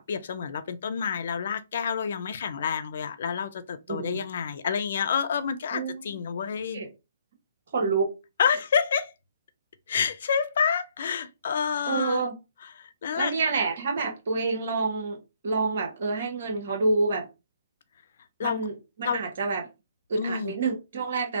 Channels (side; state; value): both; inverted; correlation -0.67